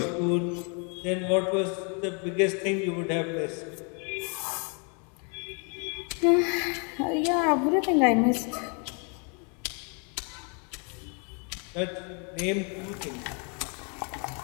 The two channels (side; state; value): right; quieter; 37.1 dB